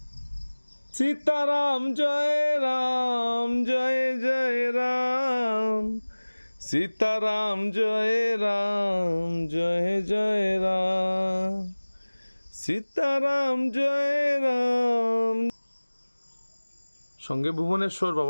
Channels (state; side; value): inverted; both; correlation -1.00